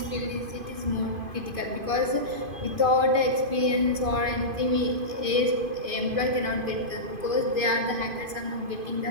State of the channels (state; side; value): late; left; 2.5 ms